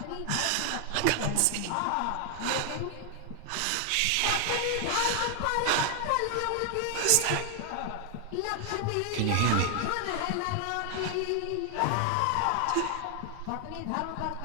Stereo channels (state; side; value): different; both; correlation 0.00